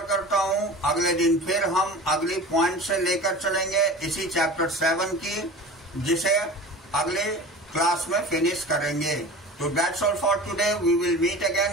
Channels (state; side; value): normal; both; correlation 0.37